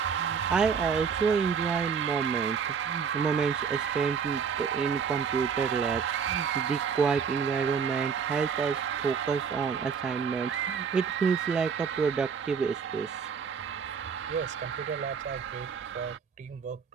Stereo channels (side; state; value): left; quieter; 6.4 dB